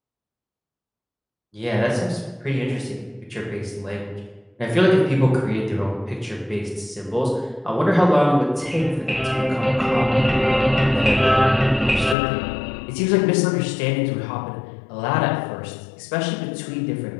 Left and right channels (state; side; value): drops out; right; at 12.2 s